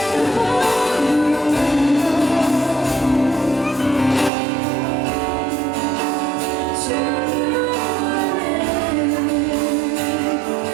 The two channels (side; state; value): left; drops out; at 4.3 s